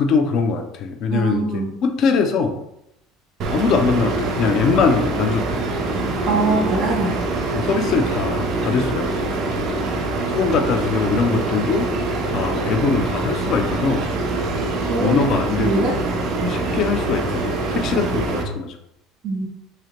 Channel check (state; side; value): normal; both; correlation 0.47